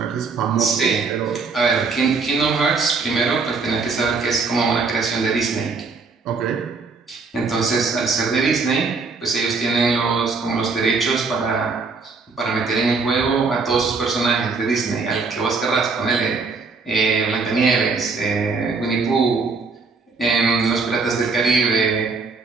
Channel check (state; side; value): quieter; left; 4.5 dB